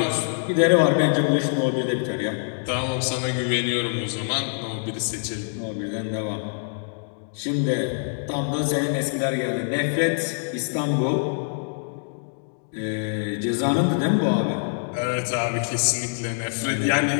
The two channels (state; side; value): silent; right; digital silence